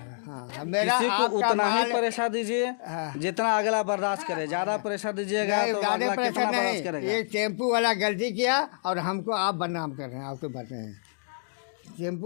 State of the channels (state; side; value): silent; right; digital silence